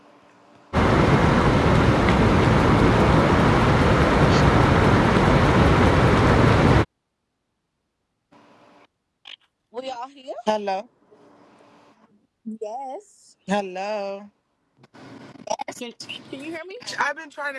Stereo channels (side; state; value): both; identical; correlation 1.00